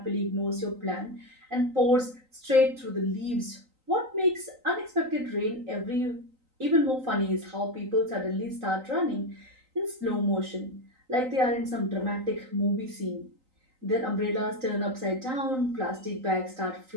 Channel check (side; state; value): left; late; 3.9 ms